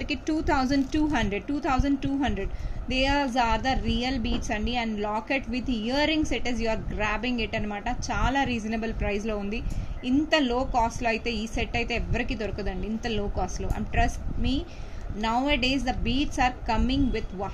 2200. These are the real beads అండి. And locket with earrings it is, you are grabbing it అనమాట. చాలా రీజనబుల్ ప్రైస్లో ఉంది. ఇంత లో కాస్ట్లో అయితే ఈ సెట్ అయితే ఎవరికి దొరకదండి, ఇంత లో కాస్ట్లో. And trust me, nowadays the beads are coming with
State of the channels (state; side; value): identical; both; correlation 1.00